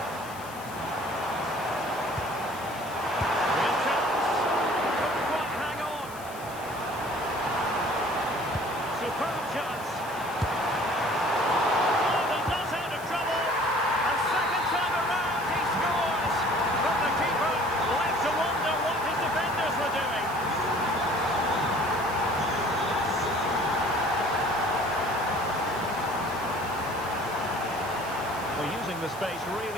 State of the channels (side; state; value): left; noise; hiss, 18 dB below the sound